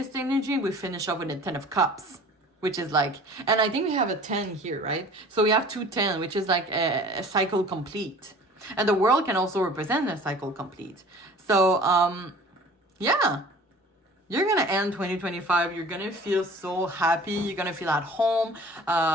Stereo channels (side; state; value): both; normal; correlation 0.46